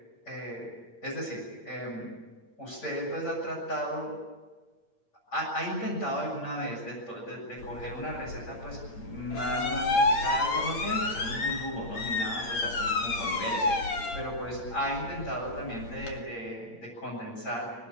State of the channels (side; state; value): right; late; 8.7 ms